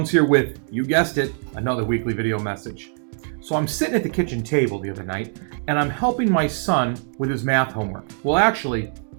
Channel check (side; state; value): left; silent; 64 dB below the other